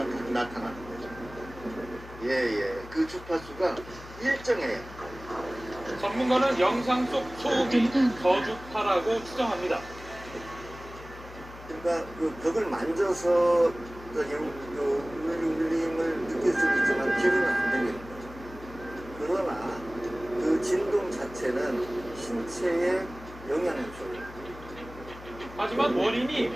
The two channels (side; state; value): left; noise; hum, 16 dB below the sound